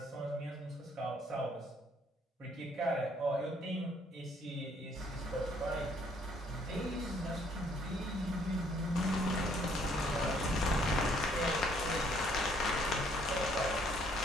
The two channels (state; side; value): normal; both; correlation 0.65